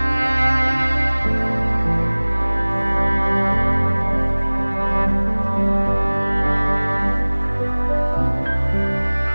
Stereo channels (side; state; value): both; inverted; correlation -1.00